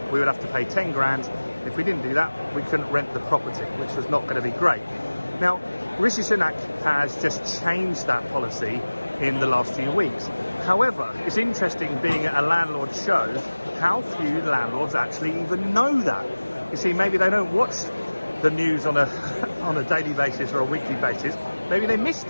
we would have to pay 10 grand. If we didn't do that, we couldn't rent the property, which was not going to be great. Now, Rishi Sunak has just changed that policy in the last few weeks. However, it's interesting being at a landlord show, how few landlords actually even know that. You see, maybe they don't watch the news on a daily basis or a weekly basis. Maybe they missed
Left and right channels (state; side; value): inverted; both; correlation -1.00